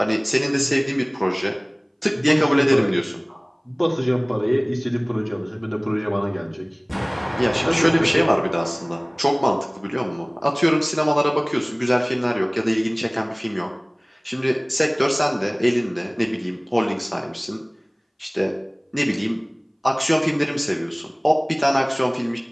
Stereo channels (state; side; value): identical; both; correlation 1.00